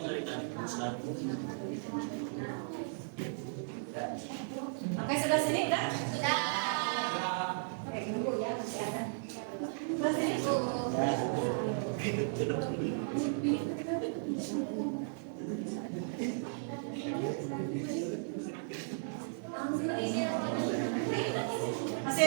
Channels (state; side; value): silent; left; 54 dB below the other